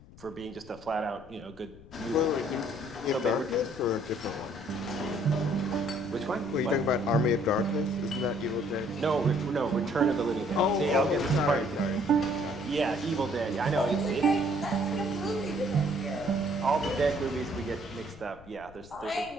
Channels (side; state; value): left; noise; rumble, 21 dB below the sound